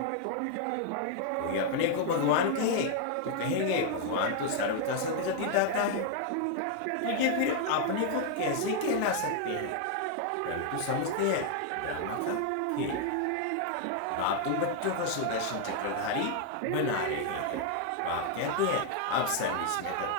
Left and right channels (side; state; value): both; different; correlation 0.00